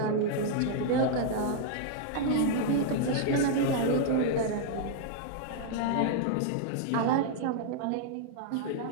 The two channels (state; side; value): different; both; correlation -0.01